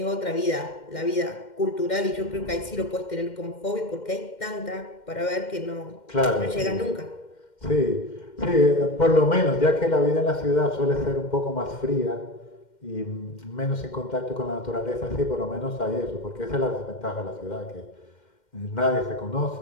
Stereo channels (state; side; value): late; right; 2.1 ms